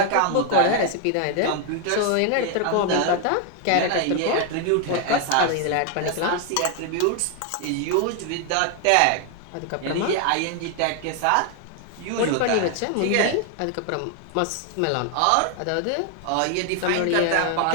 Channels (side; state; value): both; different; correlation 0.00